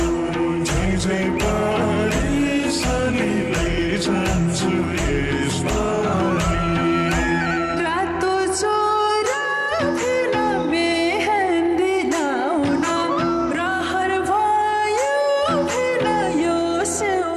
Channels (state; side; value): identical; both; correlation 1.00